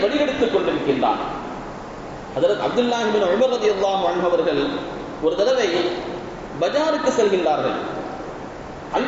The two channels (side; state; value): both; identical; correlation 1.00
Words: வழிகெடுத்துக் கொண்டிருக்கின்றான். ஹஜ்ரத் அப்துல்லாஹ் இப்னு உமர் ரலியல்லாஹு அன்ஹு அவர்கள் ஒரு தடவை பஜாருக்கு செல்கின்றார்கள்.